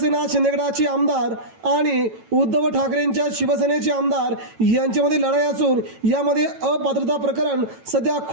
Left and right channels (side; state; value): left; late; 9.0 ms